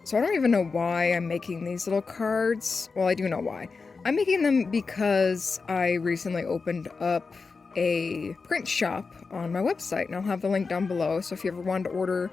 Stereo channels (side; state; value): right; quieter; 4.5 dB